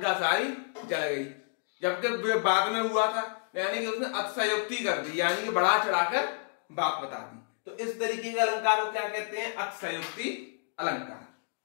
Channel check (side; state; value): right; silent; digital silence